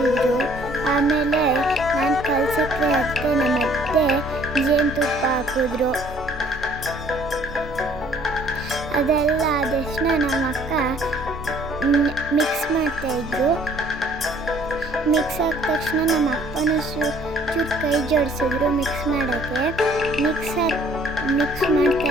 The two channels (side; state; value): both; normal; correlation 0.59